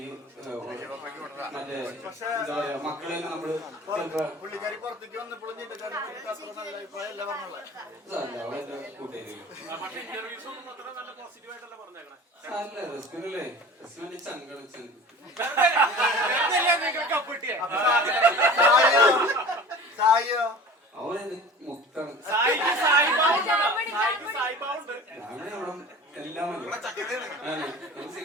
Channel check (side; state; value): both; normal; correlation 0.40